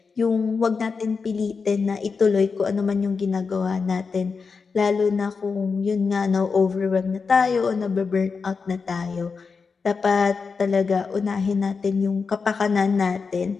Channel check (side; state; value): right; quieter; 5.0 dB